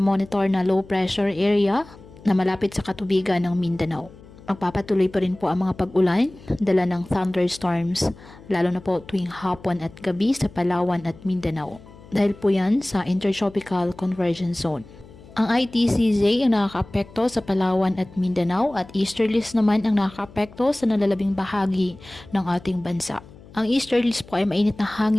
na low pressure area na malapit sa katubigan ng Mindanao. Magpapatuloy pa rin po ang mga pag-ulan, dala ng thunderstorms, lalo na po tuwing hapon at gabi sa Palawan at Mindanao. Dahil po yan sa Intertropical Convergence Zone. Ang ITCZ ang nakakaapekto sa Palawan at Mindanao at easterlies naman ang nakakaapekto sa nalalabing bahagi ng ating bansa. Ang easterlies po ay mainit na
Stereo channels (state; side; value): noise; left; hum, 21 dB below the sound